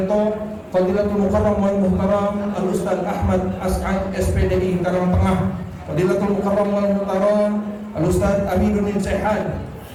Fadilatul Mukarram wal Muhtaram Al-Ustaz Ahmad As'ad SPDI Karang Tengah, Fadilatul Mukarram wal Muhtaram Al-Ustaz Aminuddin Sehan,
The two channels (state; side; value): identical; both; correlation 1.00